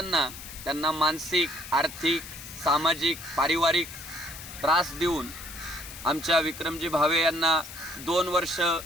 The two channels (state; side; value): noise; left; hiss, 13 dB below the sound